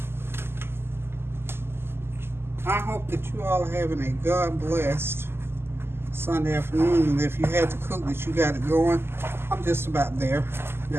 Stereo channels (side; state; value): left; late; 0.12 ms